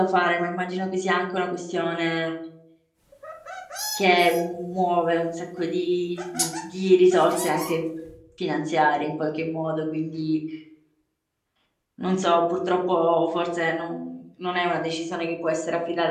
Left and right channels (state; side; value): identical; both; correlation 1.00